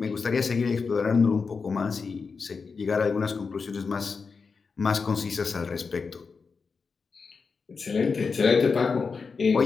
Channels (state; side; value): quieter; right; 5.0 dB